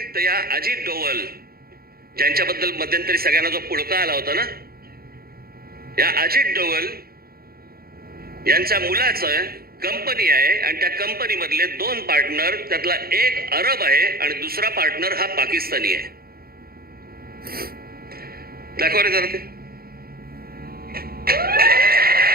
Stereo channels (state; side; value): late; left; 0.44 ms